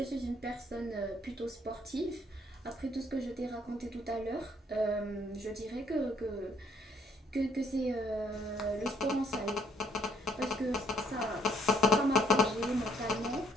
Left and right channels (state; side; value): normal; both; correlation 0.66